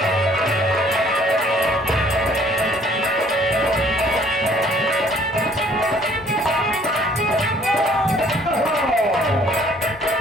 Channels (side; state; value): both; normal; correlation 0.58